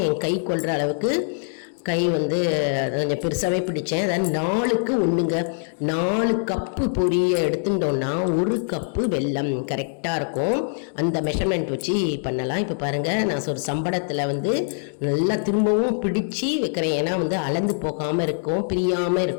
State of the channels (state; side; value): silent; right; digital silence